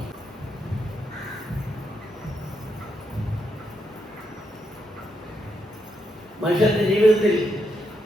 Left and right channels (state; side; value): normal; both; correlation 0.80